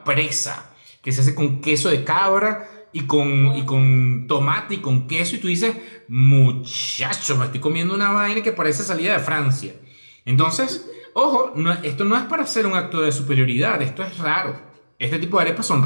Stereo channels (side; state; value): both; inverted; correlation -1.00